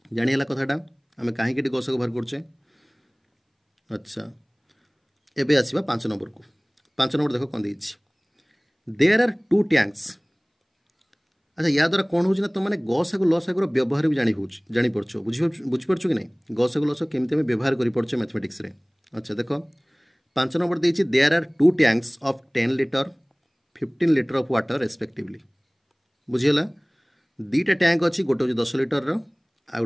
जानीला कथाटा आम कहीं गसागु बाहर करचे अच्छा एबे आसिबा 5 नंबर को 5 नंबर देखो कौन देछि देयर आर टू टैंक्स। अच्छा या द्वारा कौन होना तुम मैंने गसागु लसागुर व्यवहार भी जानी पड़छ बुझीपार कि नहीं गसागु लस केमी आम व्यवहार कर मैथमेटिक्स रे। अच्छा देख 5 नंबर देछि there are two tanks of 10 litre 15 litre of water respectively. बुझीगला दीटा टैंक अच्छी गोटे हूँ 10 लीटर आ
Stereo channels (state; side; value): identical; both; correlation 1.00